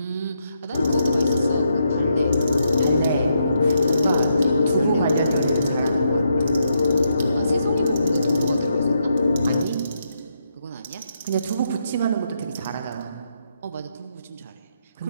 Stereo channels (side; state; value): both; inverted; correlation -0.80